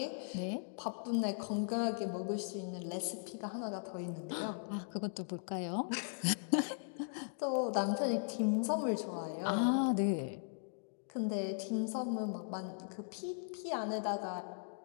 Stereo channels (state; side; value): silent; right; digital silence